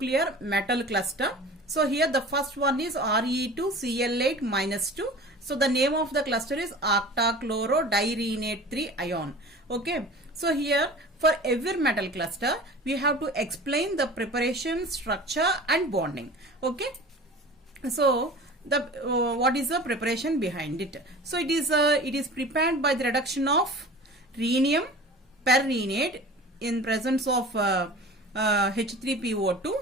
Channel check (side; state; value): both; normal; correlation 0.39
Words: metal cluster. So here the first one is Re2Cl8 minus 2. So the name of the cluster is octachlorodirenate 3 ion. Okay. So here for every metal cluster we have to explain the preparation, structure and bonding. Okay. So the what is the preparation behind it? So it is prepared by the reduction of rhenium perrhenate in presence of